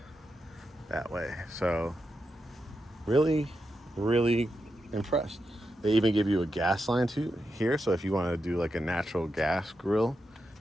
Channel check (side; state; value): both; normal; correlation 0.87